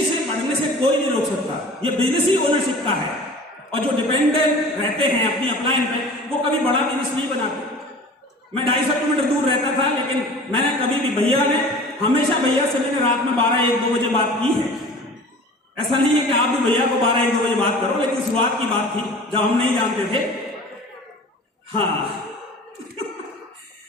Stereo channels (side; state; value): both; normal; correlation 0.42